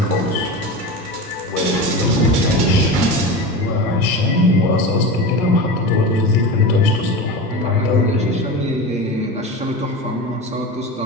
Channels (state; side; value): normal; both; correlation 0.26